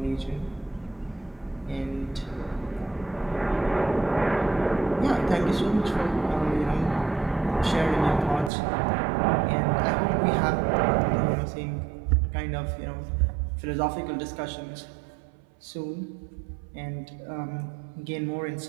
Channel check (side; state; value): left; drops out; at 8.5 s